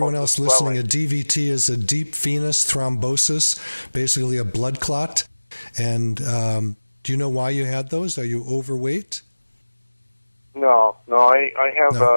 else listening, a DVT is a deep venous thrombosis, basically a blood clot. And do you know why you had those? Are you overweight? No. I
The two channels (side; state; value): both; inverted; correlation -1.00